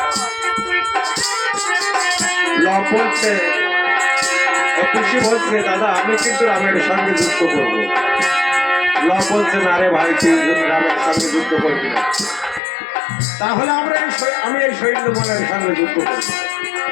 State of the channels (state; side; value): drops out; right; at 12.6 s